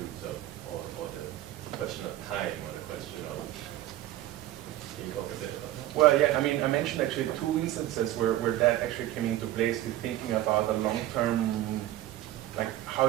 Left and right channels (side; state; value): left; quieter; 14.1 dB